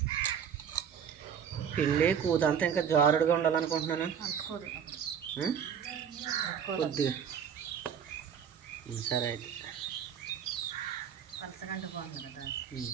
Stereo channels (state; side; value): quieter; left; 8.0 dB